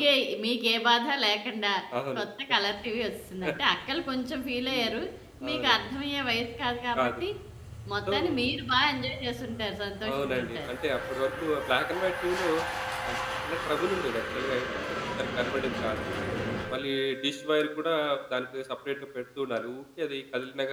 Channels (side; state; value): both; identical; correlation 1.00